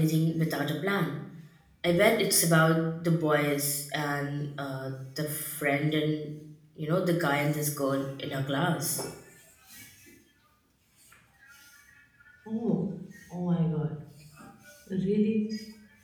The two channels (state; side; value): identical; both; correlation 1.00